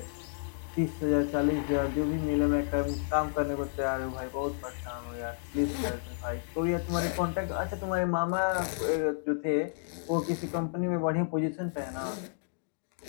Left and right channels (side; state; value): right; silent; digital silence